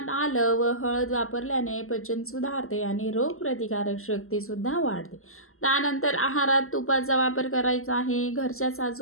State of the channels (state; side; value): late; right; 0.62 ms